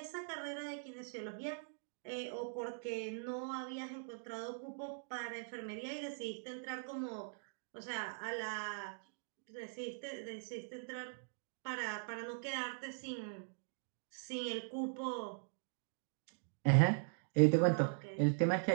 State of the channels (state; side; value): silent; left; digital silence